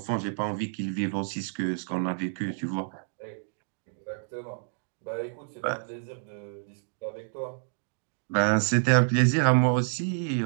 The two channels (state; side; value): silent; left; digital silence